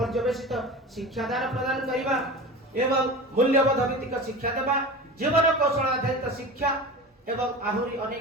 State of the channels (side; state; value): both; normal; correlation 0.31